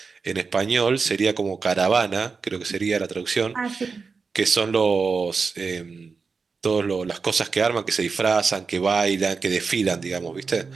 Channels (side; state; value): left; quieter; 4.8 dB